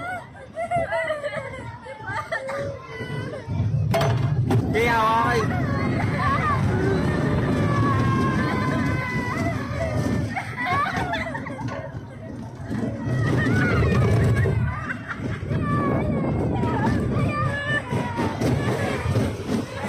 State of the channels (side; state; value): both; identical; correlation 1.00